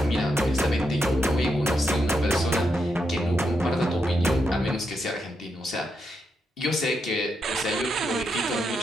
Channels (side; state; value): both; normal; correlation 0.82